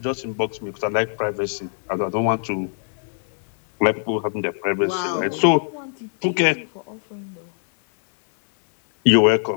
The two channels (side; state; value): right; silent; 64 dB below the other